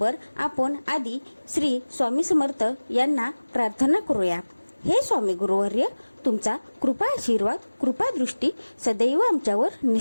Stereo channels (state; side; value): inverted; both; correlation -1.00